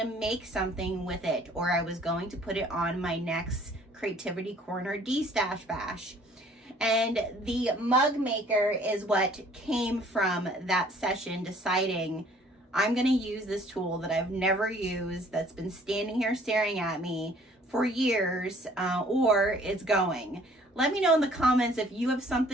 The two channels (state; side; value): normal; both; correlation 0.57